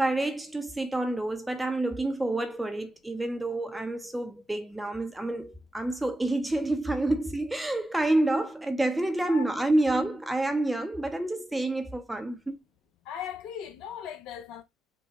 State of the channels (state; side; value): normal; both; correlation 0.92